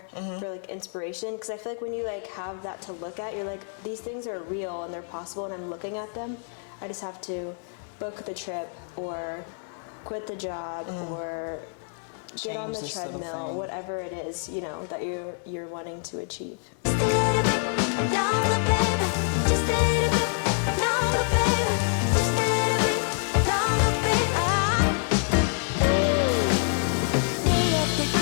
for like inspiration, because I feel like when you like have that to look at, you're like, these things are real and they're possible and I'm looking at them. I just have to book the trip or quit the job or get on the treadmill, whatever it is, you know, that you're wanting to achieve. Just a little bit longer, baby. Just a little bit longer, baby. Just a little bit longer, baby. Day after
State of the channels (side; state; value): right; silent; 57 dB below the other